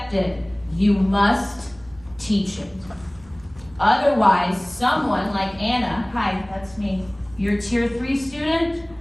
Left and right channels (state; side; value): noise; right; hum, 25 dB below the sound